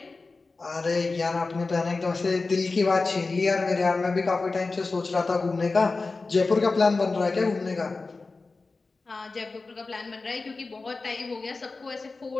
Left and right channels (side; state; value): right; quieter; 3.8 dB